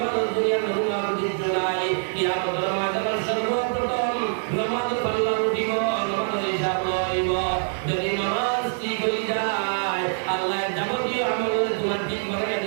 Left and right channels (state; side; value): silent; left; digital silence